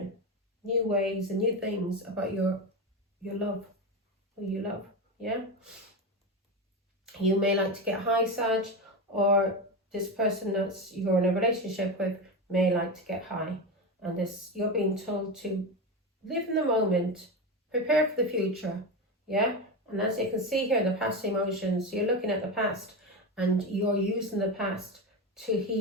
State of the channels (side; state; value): both; normal; correlation 0.18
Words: new ways and new things about your love, who you love, yeah? You may like to get high, Sag, or this person that you're in a relationship with may like to get high. And this, you're being told to live in the moment, prepare for the future, yeah? And as you can see here, the past emotions, you're looking at the past and you're using the past to